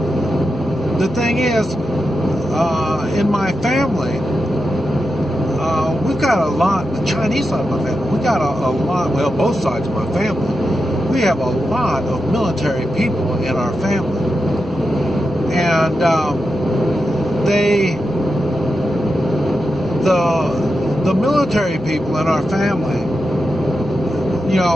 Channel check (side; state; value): both; normal; correlation 0.88